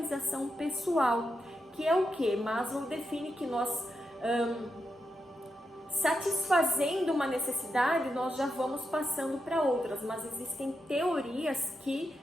pessoal, que é o que? Maslow define que nós, satisfazendo uma necessidade, nós já vamos passando para outras, mas existem teorias que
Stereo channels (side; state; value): both; normal; correlation 0.85